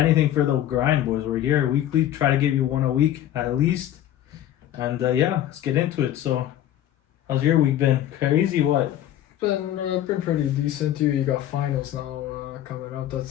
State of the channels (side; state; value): right; quieter; 12.2 dB